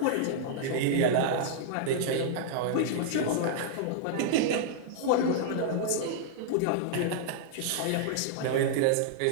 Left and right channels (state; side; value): different; both; correlation -0.01